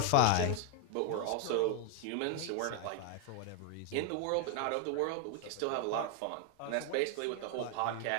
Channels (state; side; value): different; both; correlation 0.01